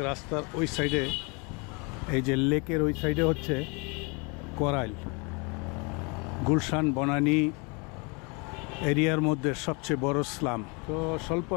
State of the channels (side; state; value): right; quieter; 30.9 dB